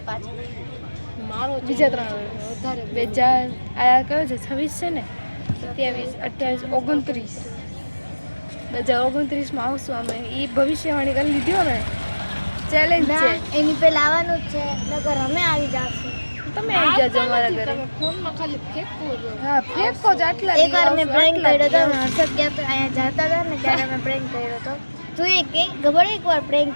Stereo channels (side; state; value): both; inverted; correlation -1.00